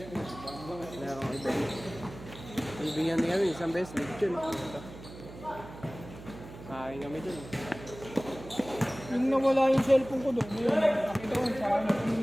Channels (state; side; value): noise; right; hum, 15 dB below the sound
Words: merong event. Ibigyan din kami, isang beses, lechon. Kain kami doon. Yung nawala yung cellphone ko doon, yun, nakita ko sa akin, yung